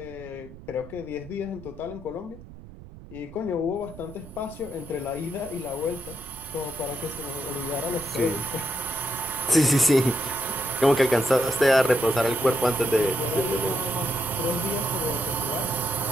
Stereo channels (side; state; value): right; noise; rumble, 17 dB below the sound